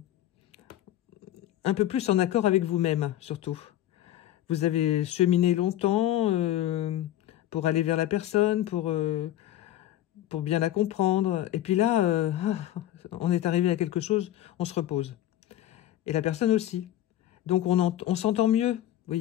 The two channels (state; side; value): quieter; right; 12.9 dB